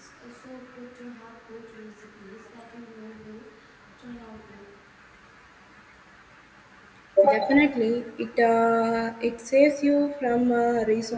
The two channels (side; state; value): both; identical; correlation 1.00